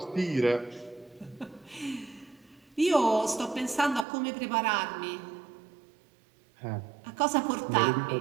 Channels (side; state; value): left; drops out; at 4.0 s